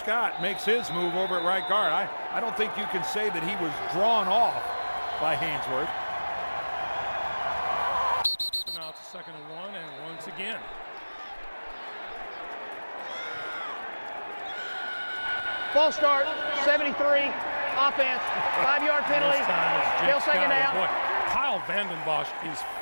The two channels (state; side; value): inverted; both; correlation -1.00